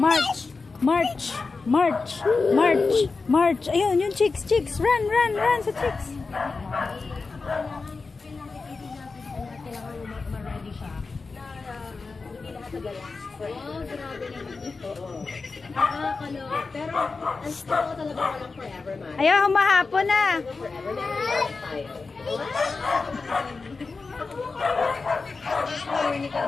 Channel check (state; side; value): quieter; right; 4.2 dB